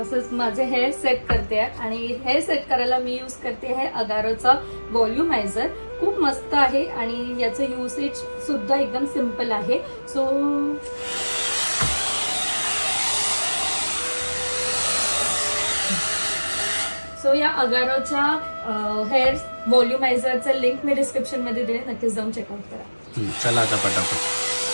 असंच माझे हेअर सेट करते. आणि हेअर सेट करायला मी यूज करते आहे अगारोचा व्हॉल्युमायझर. खूप मस्त आहे आणि याचं युसेज सुद्धा एकदम सिंपल आहे. सो या अगारोच्या हेअर व्हॉल्युमायझरचं लिंक मी डिस्क्रिप्शन मध्ये दिले, नक्कीच जाऊन चेकआउट करा. चला आता पटापट.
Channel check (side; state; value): both; inverted; correlation -1.00